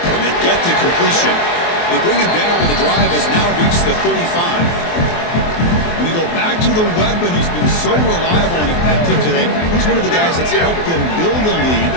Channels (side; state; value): right; late; 23 ms